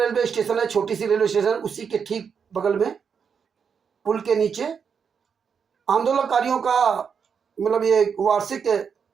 रेलवे स्टेशन है, छोटी सी रेलवे स्टेशन, उसी के ठीक बगल में पुल के नीचे आंदोलनकारियों का मतलब ये वार्षिक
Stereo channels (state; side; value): quieter; left; 6.6 dB